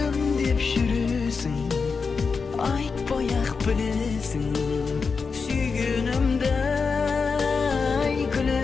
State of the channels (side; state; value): right; quieter; 5.0 dB